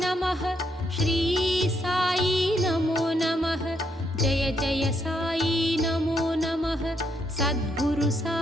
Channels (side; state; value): both; normal; correlation 0.76